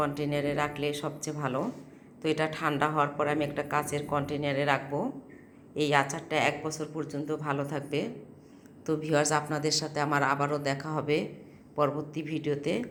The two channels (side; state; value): both; identical; correlation 1.00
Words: রাখলে সবচেয়ে ভালো। তো এটা ঠান্ডা হওয়ার পর আমি একটা কাচের কন্টেনারে রাখবো। এই আচারটা 1 বছর পর্যন্ত ভালো থাকবে। তো ভিউয়ার্স, আপনাদের সাথে আমার আবারও দেখা হবে পরবর্তী ভিডিওতে।